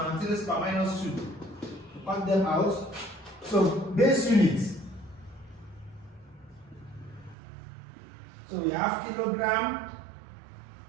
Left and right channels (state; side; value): drops out; left; at 7.4 s